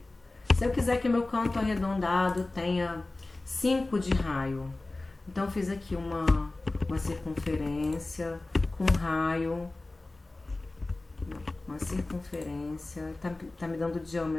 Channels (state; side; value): quieter; right; 3.0 dB